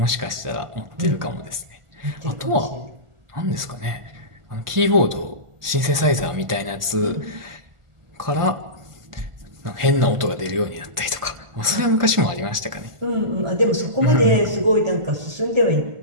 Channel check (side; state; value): left; late; 1.5 ms